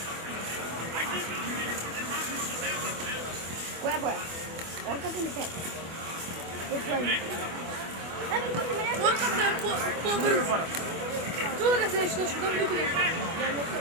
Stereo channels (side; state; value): left; late; 24 ms